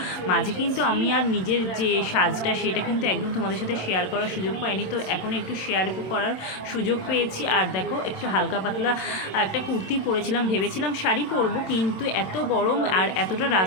মাঝে কিন্তু আমি আর নিজের যে সাজটা সেটা কিন্তু একদম তোমাদের সাথে শেয়ার করার সুযোগ পাইনি, তো এখন একটু শেয়ার করার সুযোগ পেয়েছি। আর দেখো একটু হালকা পাতলা একটা কুর্তি পরেছিলাম, ভেবেছিলাম শাড়ি পরবো, কিন্তু এত গরম আর এতটা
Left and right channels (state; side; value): late; right; 27 ms